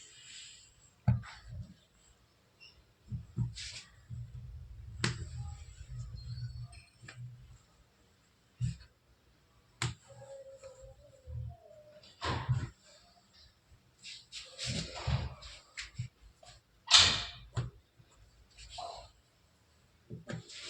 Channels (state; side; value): identical; both; correlation 1.00